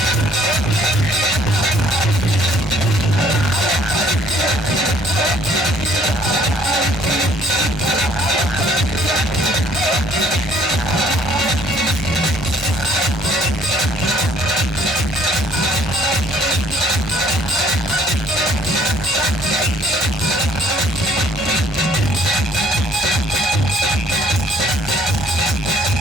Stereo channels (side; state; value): both; normal; correlation 0.62